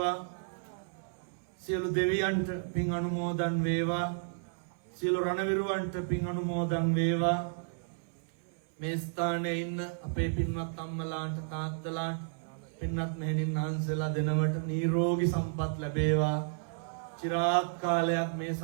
සියලු දෙවියන්ට පින් අනුමෝදන් වේවා. සියලු රණවිරුවන්ට පින් අනුමෝදන් වේවා. මේ ස්ථානයේ ඉන්න අපේ පින්වත් අම්මලාට තාත්තලාට පින්වත් මෙහෙණින් වහන්සේලා දෙනවට නිරෝගී සම්පත් ලැබේවා. චිරාත් කාලයක් මේ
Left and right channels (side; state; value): left; silent; 56 dB below the other